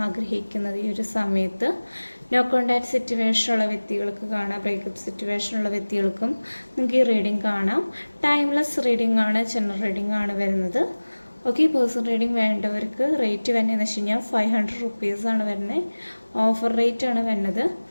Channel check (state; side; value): inverted; both; correlation -1.00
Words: ആഗ്രഹിക്കുന്നത് ഈ ഒരു സമയത്ത്. നോ കോണ്ടാക്ട് സിറ്റുവേഷനുള്ള വ്യക്തികൾക്ക് കാണാം, ബ്രേക്കപ്പ് സിറ്റുവേഷനുള്ള വ്യക്തികൾക്കും നിങ്ങൾക്ക് ഈ റീഡിംഗ് കാണാം. ടൈംലെസ് റീഡിംഗ് ആണ്, ജനറൽ റീഡിംഗ് ആണ് വരുന്നത്. ഓക്കെ, പേഴ്സണൽ റീഡിംഗ് വേണ്ടവർക്ക് റേറ്റ് വരുന്നതെന്ന് വെച്ച് കഴിഞ്ഞാൽ 500 റുപ്പീസാണ് വരുന്നത്. ഓഫർ റേറ്റ് ആണ് വരുന്നത്.